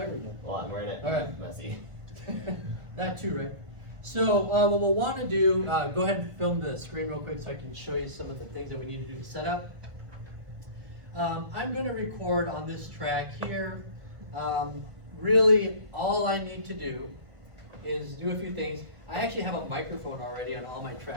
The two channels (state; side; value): late; left; 1.5 ms